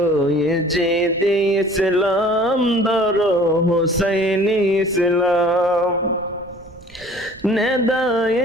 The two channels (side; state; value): right; noise; rumble, 23 dB below the sound